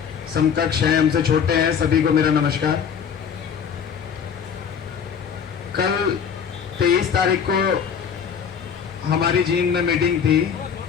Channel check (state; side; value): quieter; right; 7.3 dB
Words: समकक्ष हैं, हमसे छोटे हैं, सभी को मेरा नमस्कार। कल 23 तारीख को हमारी जींद में मीटिंग थी।